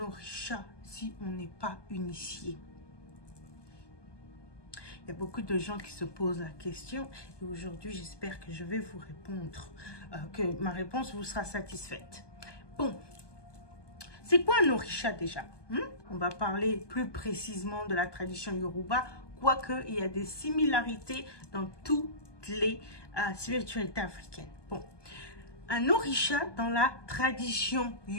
si on n'est pas initié? Il y a beaucoup de gens qui se posent la question et aujourd'hui, j'espère que je vais vous répondre, que ma réponse vous sera satisfaite. Bon, c'est quoi un orisha déjà? On va parler plus précisément de la tradition Yoruba, quoique il y a des similarités dans toutes les spiritualités africaines. Bon, un orisha dans la tradition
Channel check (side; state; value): right; late; 1.2 ms